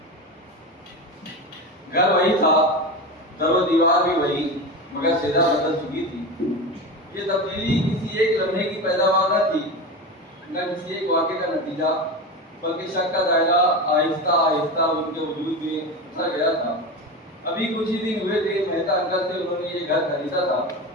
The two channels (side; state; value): both; normal; correlation 0.23